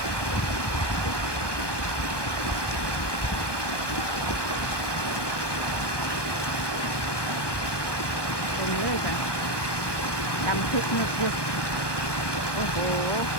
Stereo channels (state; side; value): late; right; 1.2 ms